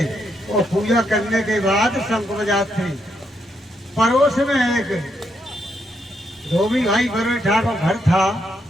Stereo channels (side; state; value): both; normal; correlation 0.78